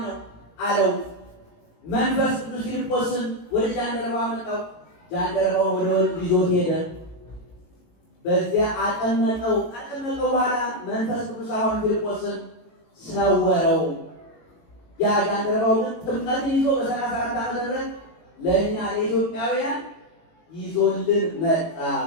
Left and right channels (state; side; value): late; right; 18 ms